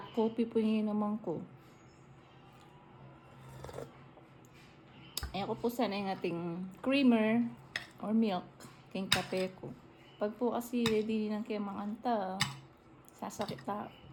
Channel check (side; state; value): both; identical; correlation 1.00